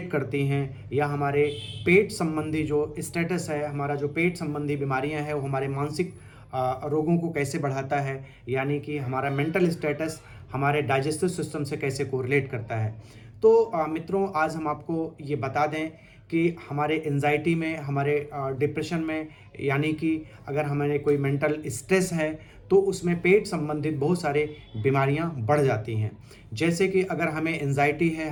करती हैं, या हमारे पेट संबंधी जो स्टेटस है, हमारा जो पेट संबंधी बीमारियां हैं वो हमारे मानसिक रोगों को कैसे बढ़ाता है, यानी कि हमारा मेंटल स्टेटस हमारे डाइजेस्टिव सिस्टम से कैसे कोरिलेट करता है। तो मित्रों, आज हम आपको ये बता दें कि हमारे एंजाइटी में, हमारे डिप्रेशन में, यानी कि अगर हमारे कोई मेंटल स्ट्रेस है तो उसमें पेट संबंधित बहुत सारे बीमारियां बढ़ जाती हैं। जैसे कि अगर हमें एंजाइटी है,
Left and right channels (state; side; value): identical; both; correlation 1.00